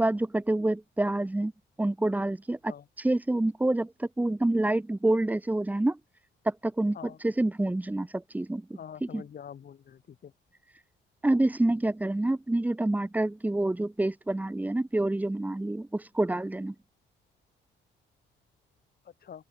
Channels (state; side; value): normal; both; correlation 0.98